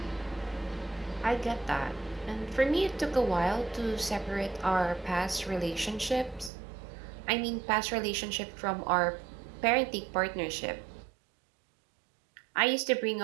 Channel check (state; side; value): drops out; left; at 6.5 s